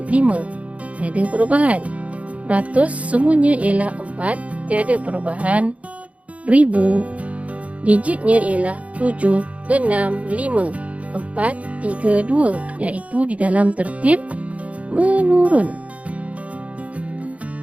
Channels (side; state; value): left; late; 0.066 ms